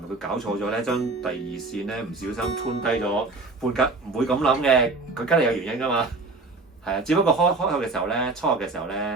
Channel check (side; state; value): left; quieter; 3.5 dB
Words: 佢搞錯咗咧？將第二線咧唔小心 tune 低咗半格，唔會咁諗嘅，佢梗係有原因㗎嘛。係啊，只不過開口嘅時候咧，初學嘅時候